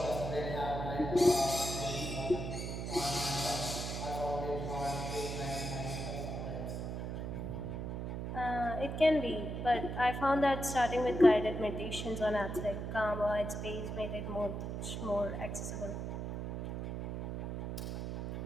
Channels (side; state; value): right; noise; hum, 4 dB below the sound